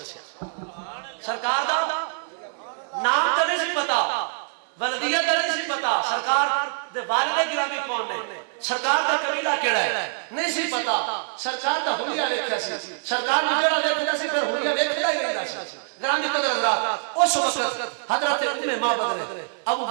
سرکار دا نام تے نہیں سی پتا ولدیت تے نہیں سی پتا سرکار دے والد گرامی کون نے سرکار دا قبیلہ کیڑا ہے نہیں سی پتا سرکار دا ہویا ویکھیا سی سرکار نے جڑا ویکھدا سی پھر ہویا ویکھدا ہی رہندا سی. گرامی قدر حضرات اس وقت حضرت ام معبد نے ابو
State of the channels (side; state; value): left; silent; digital silence